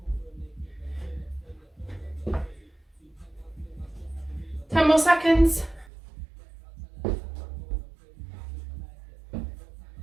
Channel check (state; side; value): drops out; left; at 5.9 s